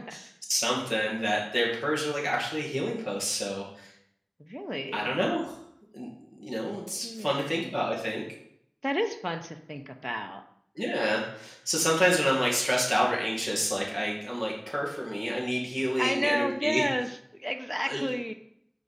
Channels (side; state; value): both; identical; correlation 1.00